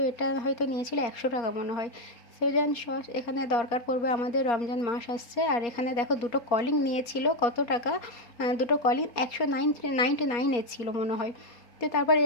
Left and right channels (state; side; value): late; right; 4.2 ms